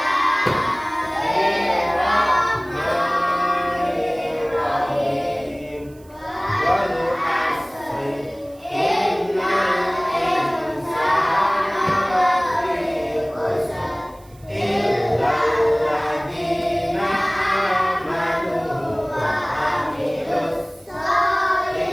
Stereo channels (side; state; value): right; noise; hiss, 28 dB below the sound